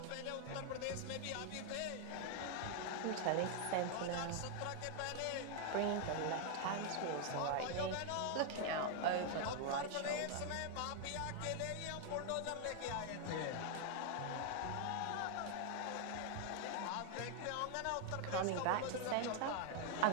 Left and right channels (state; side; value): different; both; correlation 0.00